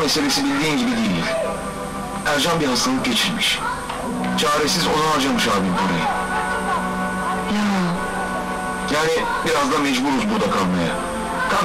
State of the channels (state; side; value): identical; both; correlation 1.00